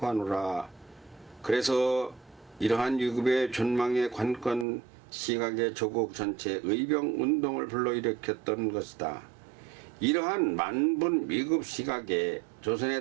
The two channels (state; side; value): drops out; left; at 4.7 s